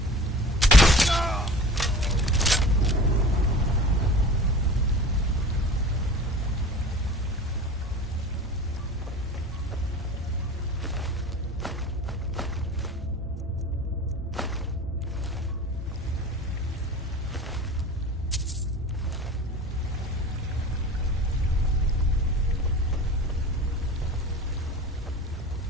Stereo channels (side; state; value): both; normal; correlation 0.38